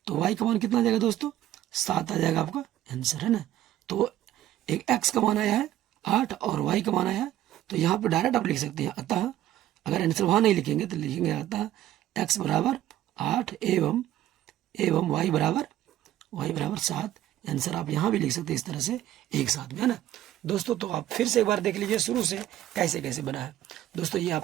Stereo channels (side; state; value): left; quieter; 13.0 dB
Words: तो y का मान कितना आ जाएगा दोस्तों, 7 आ जाएगा आपका आंसर, है ना। तो एक x का मान आया है 8 और y का मान आया है, तो यहाँ पे डायरेक्ट आप लिख सकते हैं। अतः अगर आंसर वहाँ नहीं लिखेंगे तो लिखेंगे अतः x बराबर 8 एवं y बराबर 7। आंसर आप यहाँ भी लिख सकते हैं इस तरह से एक साथ में, है ना दोस्तों। तो आप फिर से एक बार देख लीजिए शुरू से कैसे कैसे बना है दोस्तों। ये